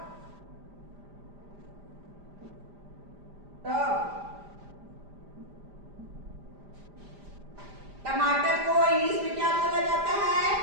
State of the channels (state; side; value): late; left; 5.0 ms